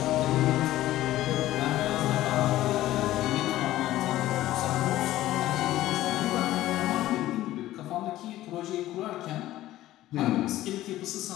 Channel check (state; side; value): quieter; right; 15.0 dB